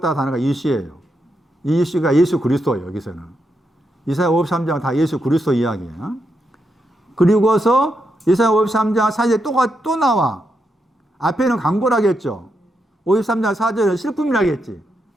단어가 이시예요. 이 이시가 예수 그리스도예요. 여기서는. 이사야 53장은 다 예수 그리스도 이야기예요. 그리고서 이사야 53장 4절에 또 나와. 앞에는 강고라겠죠. 53장 4절은 슬픔이라겠지.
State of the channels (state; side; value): normal; both; correlation 0.83